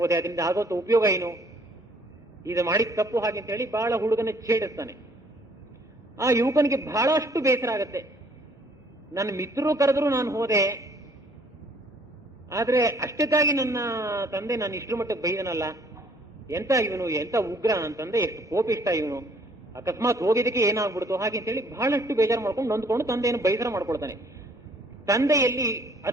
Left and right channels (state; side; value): normal; both; correlation 0.61